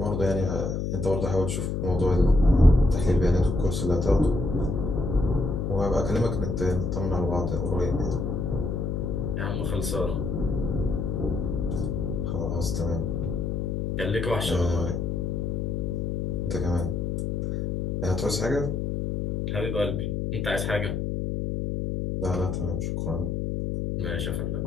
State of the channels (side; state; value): left; noise; hum, 1 dB below the sound